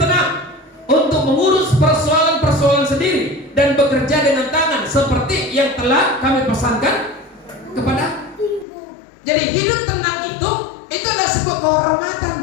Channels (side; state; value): right; drops out; at 8.7 s